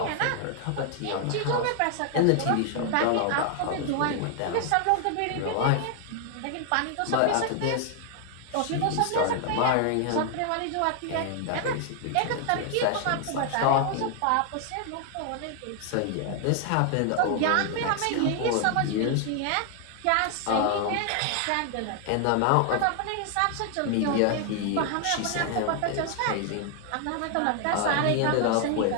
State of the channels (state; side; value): different; both; correlation 0.00